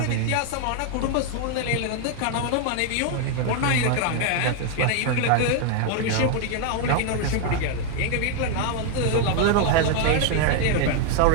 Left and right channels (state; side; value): different; both; correlation 0.00